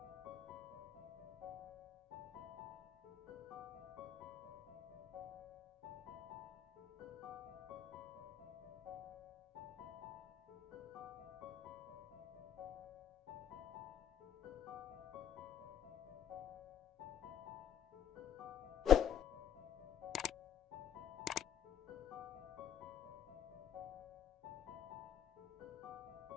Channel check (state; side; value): quieter; right; 9.6 dB